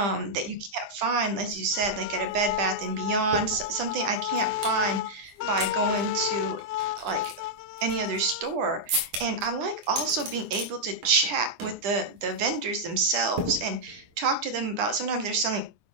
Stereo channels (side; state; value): left; late; 10 ms